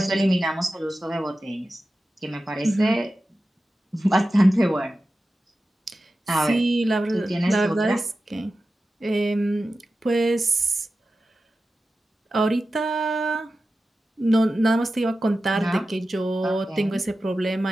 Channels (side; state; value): both; normal; correlation 0.93